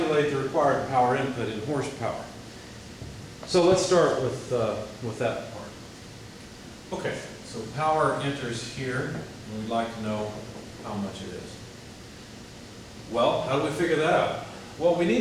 the required power input in horsepower. So let's start with that part. Okay, so power enters here, and we'd like to know how much it is. Well, how do we figure that out? Well, we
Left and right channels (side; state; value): both; identical; correlation 1.00